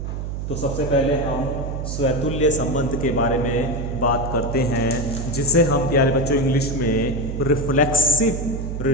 तो सबसे पहले हम स्वतुल्य संबंध के बारे में बात करते हैं, जिसे हम प्यारे बच्चों इंग्लिश में रिफ्लेक्सिव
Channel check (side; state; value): right; noise; hum, 5 dB below the sound